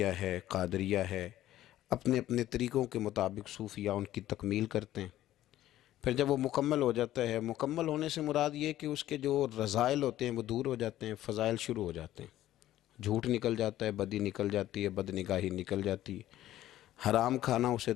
ہے، قادریہ ہے، اپنے اپنے طریقوں کے مطابق صوفیاء ان کی تکمیل کرتے ہیں۔ پھر جب وہ مکمل ہو جاتا ہے، مکمل ہونے سے مراد یہ کہ اس کے جو رذائل ہوتے ہیں وہ دور ہو جاتے ہیں، فضائل شروع ہو جاتے ہیں، جھوٹ نکل جاتا ہے، بدی نکل جاتی ہے، بد نگاہی نکل جاتی ہے، حرام کھانا اسے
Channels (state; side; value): quieter; right; 13.7 dB